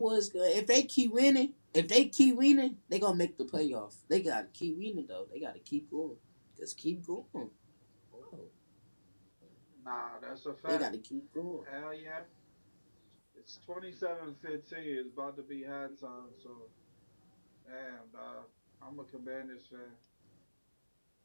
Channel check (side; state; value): both; inverted; correlation -1.00